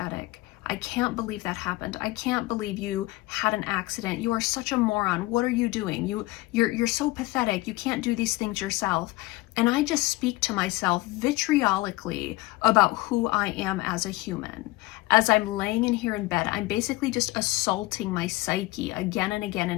I can't believe that happened. I can't believe you had an accident. You are such a moron. What are you doing? You're so pathetic. You can't do these things yourself. And I just speak to myself vitriolically about who I am as a human. As I'm laying in here in bed, I'm basically just assaulting my psyche again and again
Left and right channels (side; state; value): right; quieter; 20.3 dB